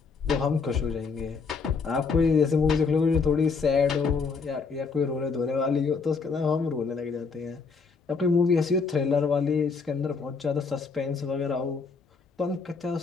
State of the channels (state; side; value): quieter; right; 4.9 dB